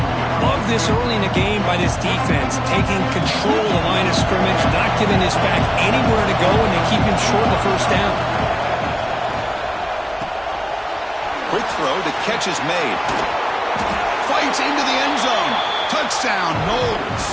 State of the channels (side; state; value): both; identical; correlation 1.00